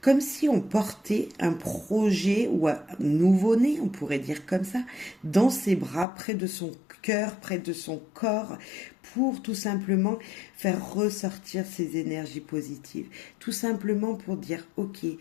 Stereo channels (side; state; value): right; drops out; at 6.1 s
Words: Comme si on portait un projet ou un nouveau-né, on pourrait dire comme ça, dans ses bras, près de son cœur, près de son corps, pour tout simplement faire ressortir ses énergies positives. Tout simplement pour dire, ok,